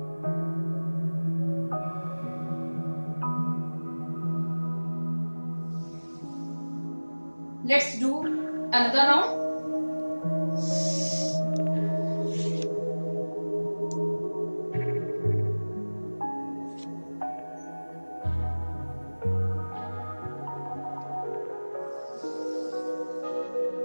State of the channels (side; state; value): both; inverted; correlation -1.00